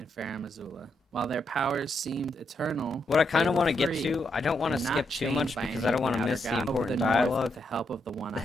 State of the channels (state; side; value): normal; both; correlation 0.80